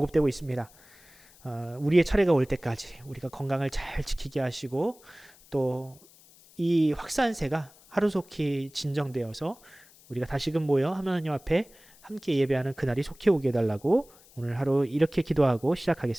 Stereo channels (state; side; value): noise; left; hiss, 26 dB below the sound